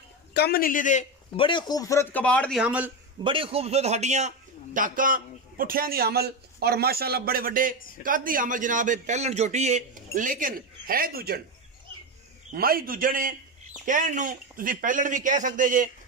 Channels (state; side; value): normal; both; correlation 0.14